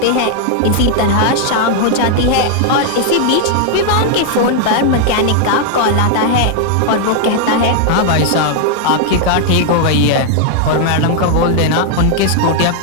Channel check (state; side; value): different; both; correlation 0.00